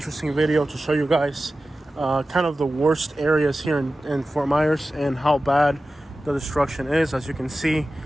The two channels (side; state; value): both; normal; correlation 0.95